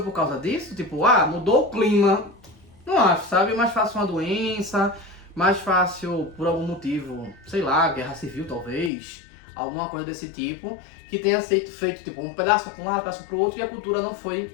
por causa disso? Tipo, mudou o clima. Não acho, sabe? Mais fácil uma doença, mais fácil por algum motivo, sei lá, guerra civil talvez, alguma coisa desse tipo, que tenha feito tipo um pedaço para um lado, um pedaço para o outro, e a cultura não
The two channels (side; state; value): right; drops out; at 8.9 s